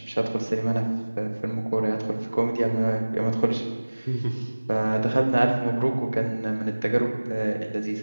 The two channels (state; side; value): inverted; both; correlation -1.00